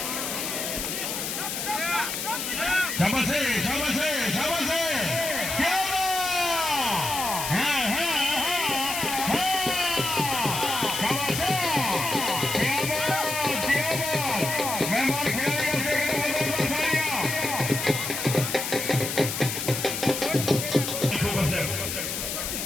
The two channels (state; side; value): noise; left; hiss, 3 dB below the sound